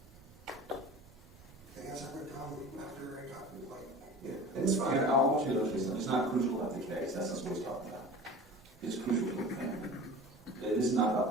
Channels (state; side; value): normal; both; correlation 0.38